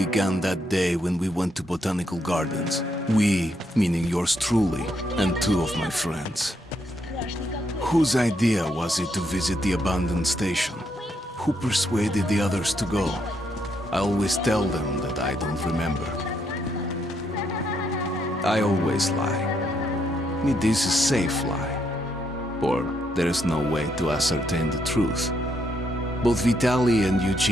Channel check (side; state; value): both; normal; correlation 0.76